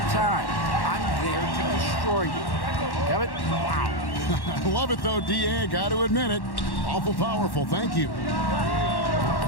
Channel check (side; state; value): right; late; 1.1 ms